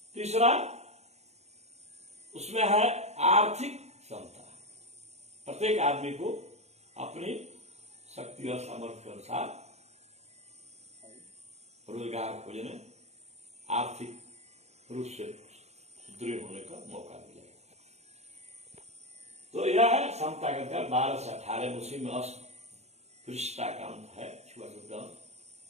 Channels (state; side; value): late; left; 0.32 ms